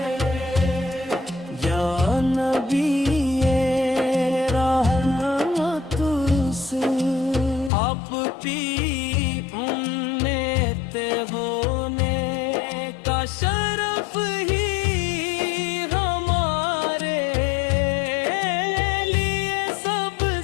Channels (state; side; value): drops out; right; at 7.7 s